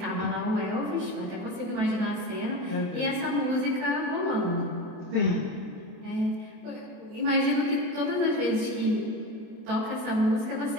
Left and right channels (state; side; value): late; left; 27 ms